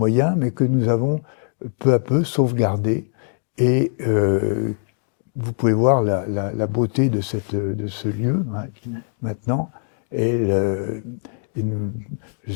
mais que nous avons peu à peu sauvegardé. Et vous pouvez voir la beauté de ce lieu maintenant. Je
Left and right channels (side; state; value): right; silent; 55 dB below the other